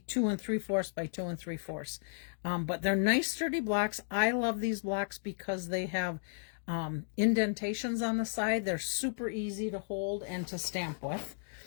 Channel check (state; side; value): silent; right; digital silence